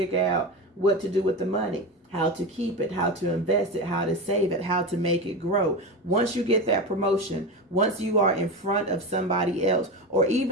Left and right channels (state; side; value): normal; both; correlation 0.22